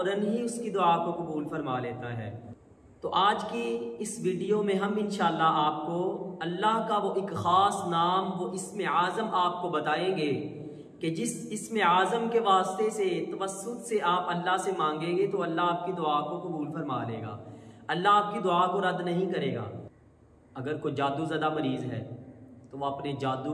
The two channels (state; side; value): identical; both; correlation 1.00